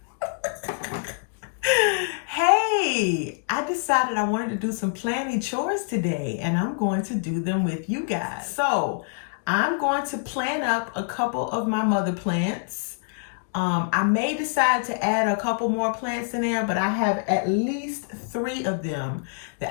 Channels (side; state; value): right; silent; digital silence